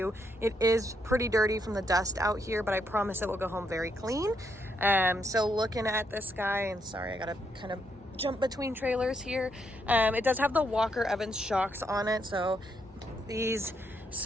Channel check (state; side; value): normal; both; correlation 0.77